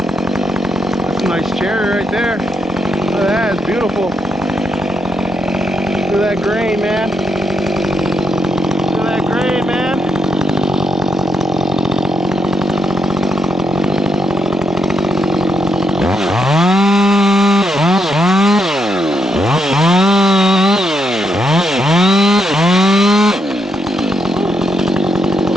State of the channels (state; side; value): normal; both; correlation 0.80